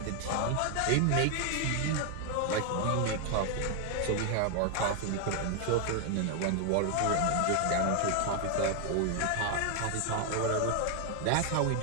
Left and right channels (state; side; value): different; both; correlation 0.00